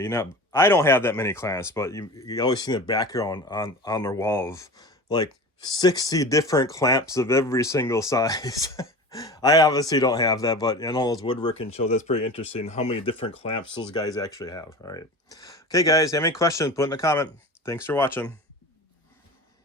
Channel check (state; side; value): normal; both; correlation 0.33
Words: don't have that many clamps, but you always see the background on their wall of like 60 different clamps of every single size. I obviously don't have that, but in all those woodworking shows, that's pretty interesting how many different clamps those guys actually have. All right. Okay, guys, have any questions, put in a comment. Thanks for watching.